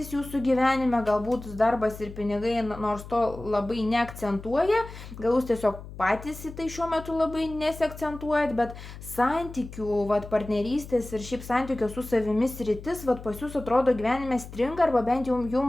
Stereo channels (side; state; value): left; noise; hum, 14 dB below the sound